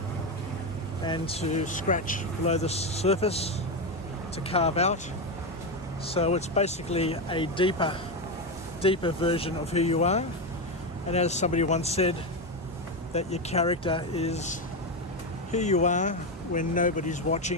and to scratch below the surface, to carve out. So it's basically a deeper version of who you are. And as somebody once said, that your character is who you are when nobody's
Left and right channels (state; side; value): normal; both; correlation 0.11